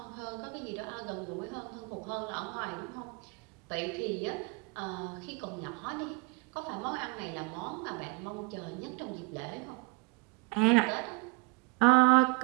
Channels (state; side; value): quieter; left; 27.9 dB